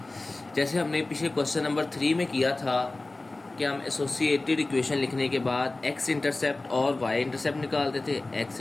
जैसे हमने पिछले क्वेश्चन नंबर 3 में किया था कि हम एसोसिएटेड इक्वेशन लिखने के बाद x इंटरसेप्ट और y इंटरसेप्ट निकालते थे। x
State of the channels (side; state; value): right; quieter; 3.1 dB